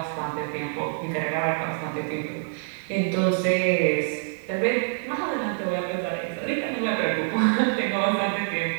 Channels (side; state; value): left; silent; 61 dB below the other